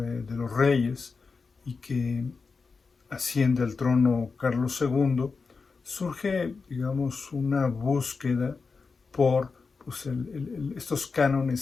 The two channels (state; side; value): quieter; right; 4.7 dB